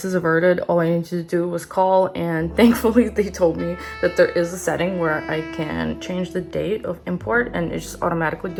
averted. All I needed to do was call, and thankfully they told me that there is a setting where I can change the date of import, and it just automatically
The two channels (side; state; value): both; identical; correlation 1.00